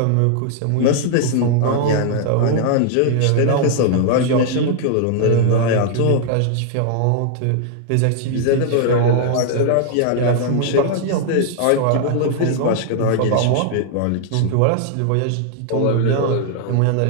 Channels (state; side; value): different; both; correlation 0.00